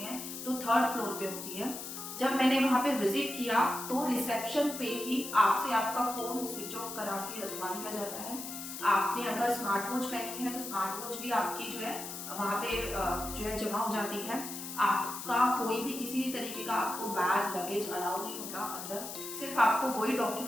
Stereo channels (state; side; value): noise; left; hiss, 8 dB below the sound